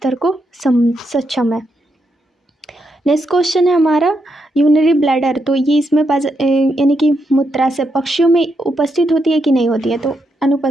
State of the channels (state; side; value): normal; both; correlation 0.81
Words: को सक्षम है। नेक्स्ट क्वेश्चन है हमारा यूरिनरी ब्लैडर। तो ये इसमें यानी कि मूत्राशय पक्षियों में उपस्थित होती है कि नहीं होती है? तो